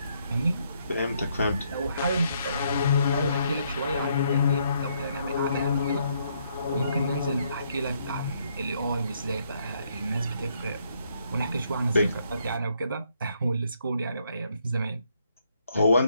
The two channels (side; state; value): both; inverted; correlation -0.73